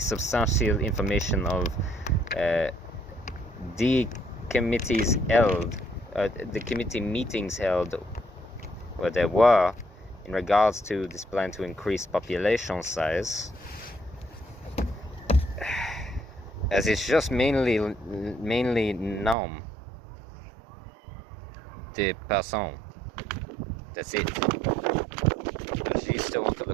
information of the committees held, the committee meetings held where there were in regards to this plan to increase population size, as it's just mainly nom de person. That's it. But she still wants to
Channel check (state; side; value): drops out; left; at 19.4 s